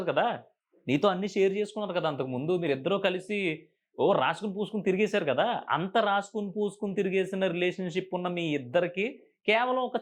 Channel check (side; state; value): both; identical; correlation 1.00